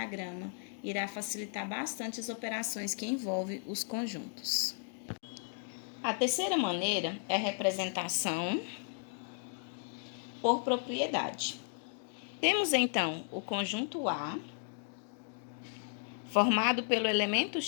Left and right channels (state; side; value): silent; right; 55 dB below the other